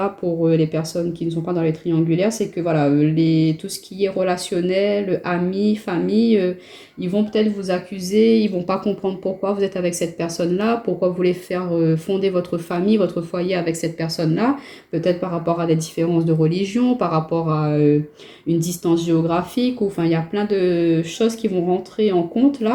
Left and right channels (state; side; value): identical; both; correlation 1.00